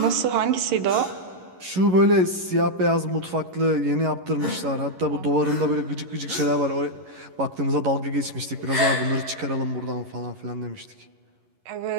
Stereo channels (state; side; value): late; left; 11 ms